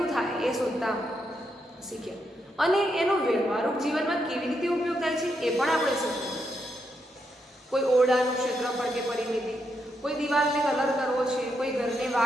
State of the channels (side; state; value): both; normal; correlation 0.81